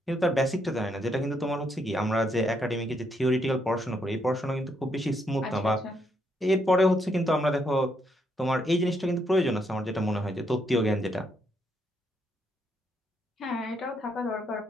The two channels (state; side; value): normal; both; correlation 0.75